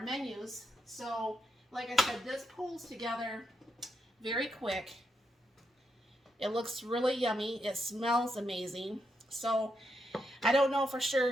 menus. So like I said, this pulls together very quick. It looks really yummy. It smells amazing. So I don't know for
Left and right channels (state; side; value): normal; both; correlation 0.82